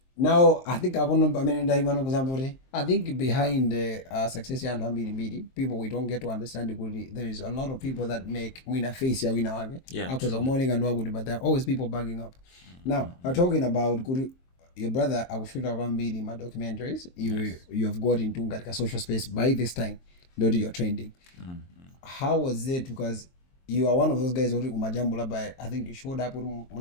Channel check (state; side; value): late; right; 23 ms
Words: Now I think I want to I think behind the success and people we don't get to understand it. There is a lot of people that make win face ya win. Yeah. Because morning and what, but there are always people backing up. Now I'm talking about your brother. I will shoot around my documentaries. You have got into a social space by this time. Not your trending. How was it? Because you are one of those guys who umajambula by, I think you showed up with